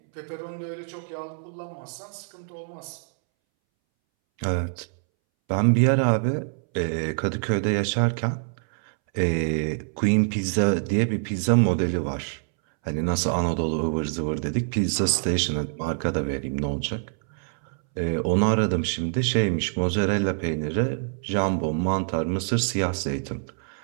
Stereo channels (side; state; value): left; silent; 61 dB below the other